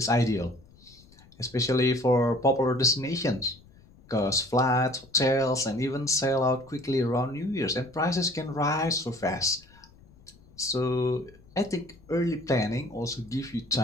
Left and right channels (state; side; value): noise; left; rumble, 26 dB below the sound